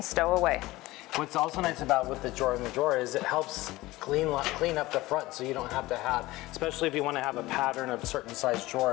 stow away. what's also nice about with the drawer in the drawer is it helps clean up the front, so you don't have to have, especially if you want to have a pattern of certain size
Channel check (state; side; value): quieter; right; 18.9 dB